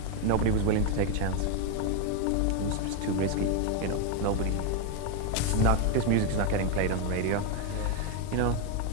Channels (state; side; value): different; both; correlation 0.02